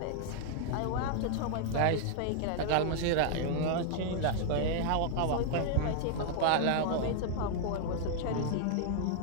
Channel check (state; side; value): different; both; correlation 0.00